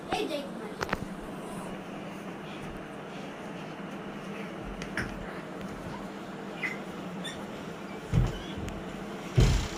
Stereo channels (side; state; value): both; identical; correlation 1.00